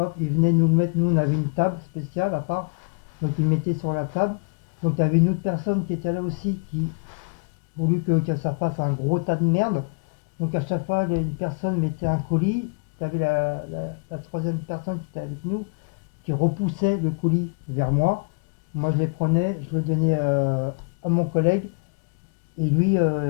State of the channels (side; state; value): right; quieter; 36.3 dB